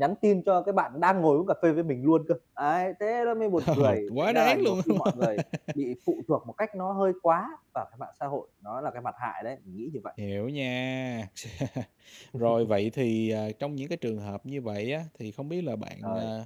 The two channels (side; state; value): both; identical; correlation 1.00